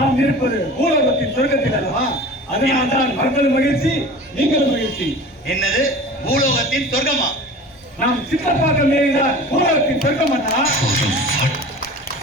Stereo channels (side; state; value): both; normal; correlation 0.39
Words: இருப்பது பூலோகத்தின் சொர்க்கத்தில் அல்லவா? அதனால்தான் மக்களும் மகிழ்ச்சி, நீங்களும் மகிழ்ச்சி. என்னது பூலோகத்தின் சொர்க்கமா? நாம் சித்தப்பாக்கம் ஏறிதான் பூலோகத்தின் சொர்க்கம் அண்ணா.